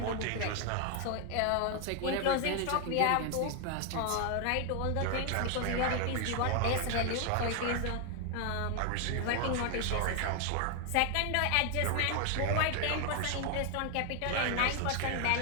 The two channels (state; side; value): different; both; correlation 0.00